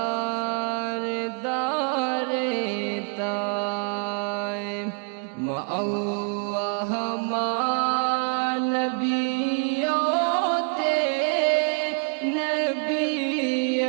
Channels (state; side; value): quieter; left; 37.4 dB